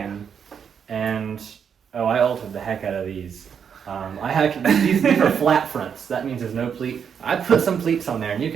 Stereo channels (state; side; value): quieter; left; 7.4 dB